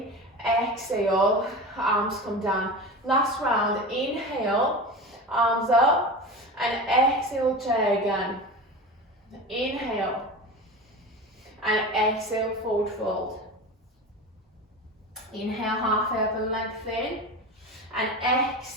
Exhale, arms come down. Last round, inhale, arms up. And exhale, chair again. Inhale. And exhale, forward fold. Inhale, halfway up and lengthen. And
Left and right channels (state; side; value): normal; both; correlation 0.29